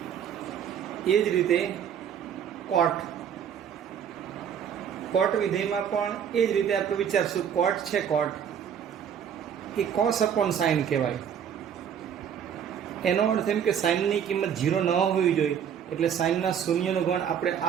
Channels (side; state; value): left; quieter; 8.4 dB